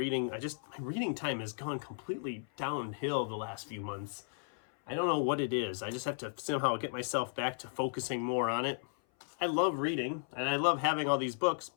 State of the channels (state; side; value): silent; right; 55 dB below the other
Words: my reading time has gone completely downhill the last few months. I don't know what it is. I just have to somehow get myself back to focusing more on it. I love reading and I love having all these books,